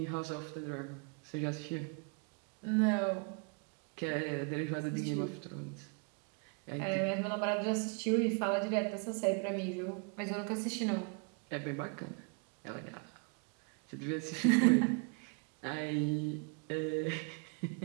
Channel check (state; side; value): quieter; left; 35.9 dB